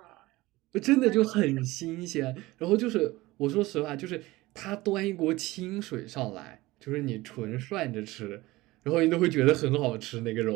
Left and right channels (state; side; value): quieter; left; 19.5 dB